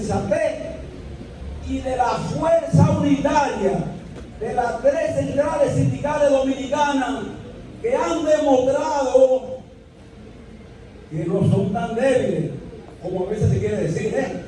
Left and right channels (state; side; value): identical; both; correlation 1.00